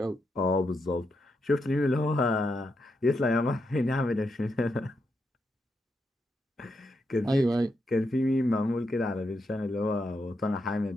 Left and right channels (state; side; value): normal; both; correlation 0.83